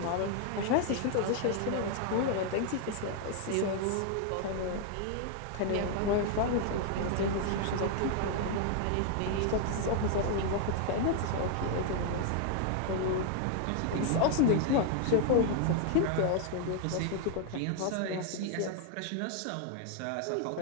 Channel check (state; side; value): different; both; correlation 0.00